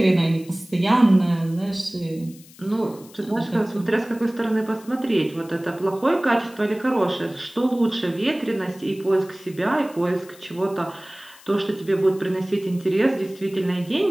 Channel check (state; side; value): noise; left; hiss, 23 dB below the sound